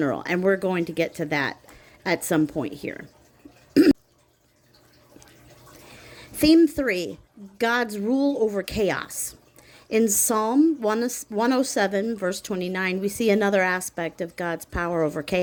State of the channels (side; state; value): both; identical; correlation 1.00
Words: and we're going to get to that at some point here. Theme 3, God's rule over chaos. In Psalm 107, verse 29, we see another aspect of God's power over